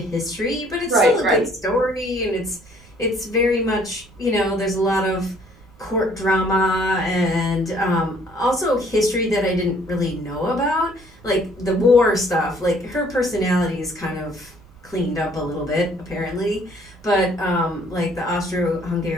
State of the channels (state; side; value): noise; right; rumble, 25 dB below the sound